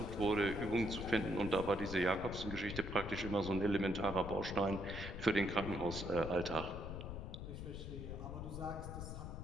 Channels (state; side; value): noise; left; rumble, 7 dB below the sound